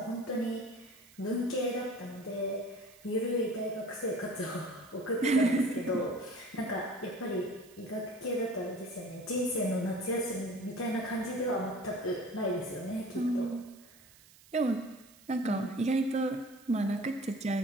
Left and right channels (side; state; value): right; noise; hiss, 24 dB below the sound